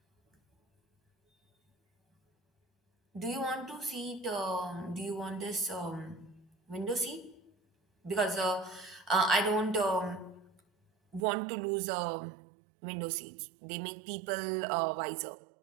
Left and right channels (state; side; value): drops out; left; at 11.2 s